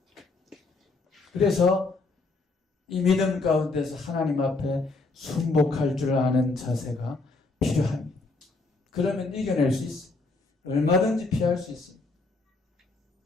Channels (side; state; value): right; quieter; 3.6 dB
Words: 그래서 이 믿음 가운데서 하나님 앞에 순복할 줄 아는 자세가 필요합니다. 그러면 이겨낼 수 있어요. 얼마든지 피할 수 있습니다.